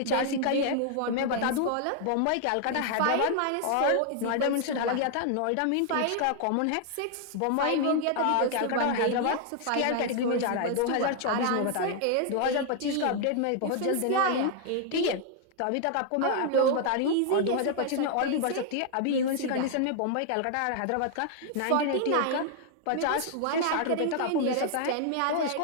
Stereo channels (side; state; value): both; different; correlation 0.00